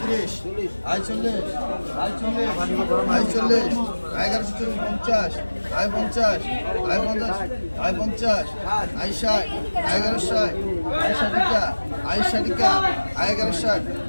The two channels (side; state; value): both; inverted; correlation -1.00